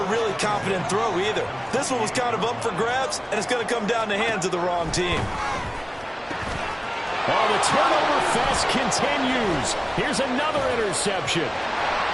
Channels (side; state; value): both; identical; correlation 1.00